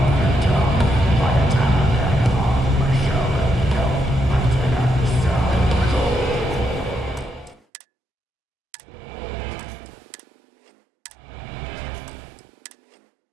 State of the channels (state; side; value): drops out; left; at 7.6 s